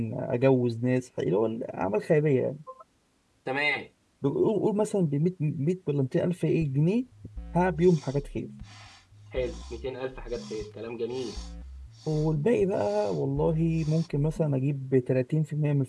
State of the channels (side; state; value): both; identical; correlation 1.00